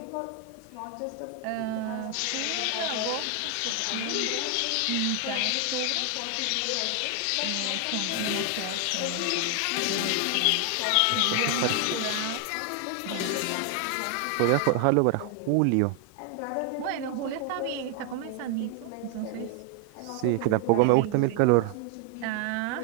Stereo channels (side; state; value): both; different; correlation 0.00